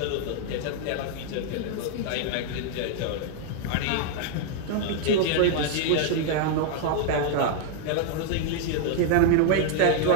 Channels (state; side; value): different; both; correlation 0.00